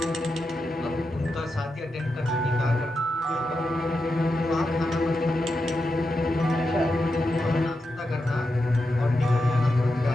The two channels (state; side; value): normal; both; correlation 0.87